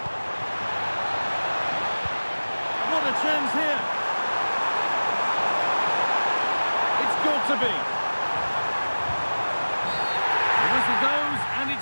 What a chance here. It's got to be. The whistle goes, and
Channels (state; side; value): inverted; both; correlation -1.00